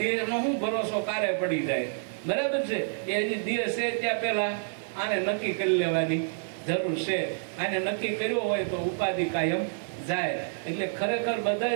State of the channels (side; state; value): left; silent; digital silence